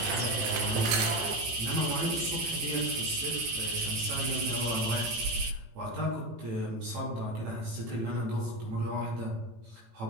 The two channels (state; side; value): late; left; 19 ms